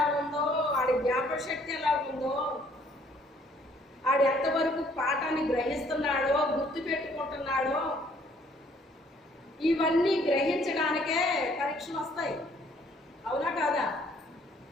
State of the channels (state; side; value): normal; both; correlation 0.62